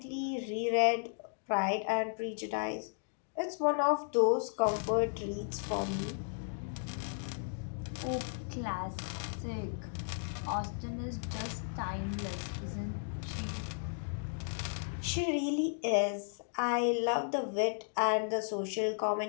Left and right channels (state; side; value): silent; right; digital silence